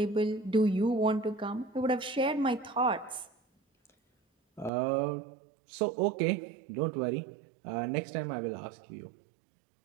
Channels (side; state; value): left; drops out; at 4.7 s